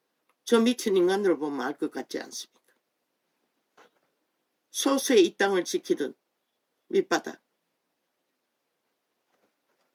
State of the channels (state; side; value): identical; both; correlation 1.00